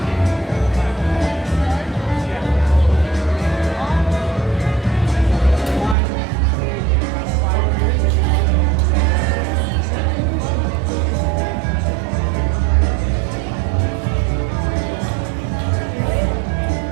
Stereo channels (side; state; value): left; drops out; at 6.0 s